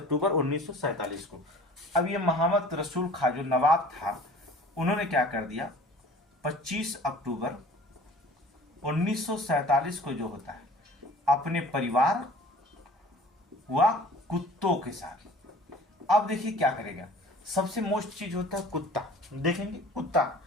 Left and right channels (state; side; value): normal; both; correlation 0.46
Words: 1947 को। अब ये मोहम्मद रसूल खां जो नवाब था, उन्होंने क्या कर दिया, 25 अक्टूबर 1947 को जो होता है अपने परिवार व कुत्तों के साथ, अब देखिए क्या करेगा, सबसे मोस्ट चीज होता है कुत्ता, देखेंगे कुत्ता।